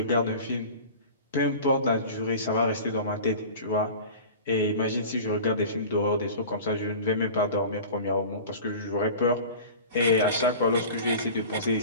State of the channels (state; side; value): inverted; both; correlation -0.37